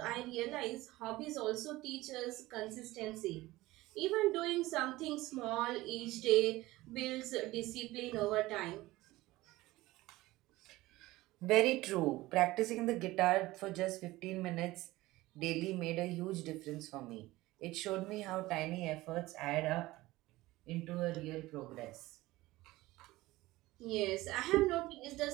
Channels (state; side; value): quieter; left; 18.5 dB